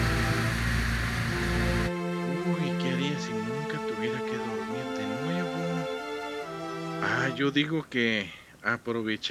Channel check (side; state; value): both; identical; correlation 1.00